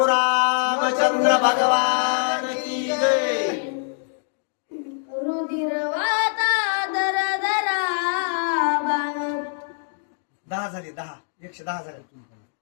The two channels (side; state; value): right; silent; digital silence